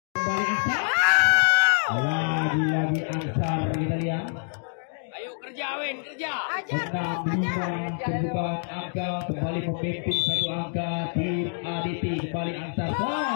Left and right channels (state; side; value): silent; right; digital silence